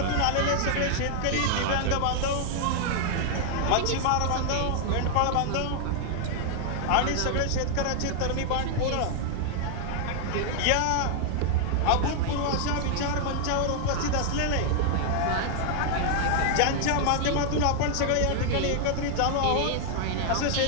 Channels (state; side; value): different; both; correlation -0.01